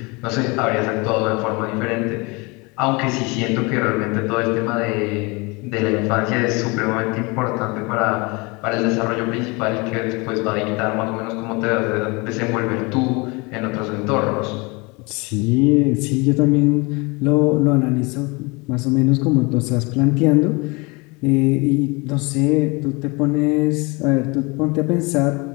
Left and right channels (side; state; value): right; quieter; 27.4 dB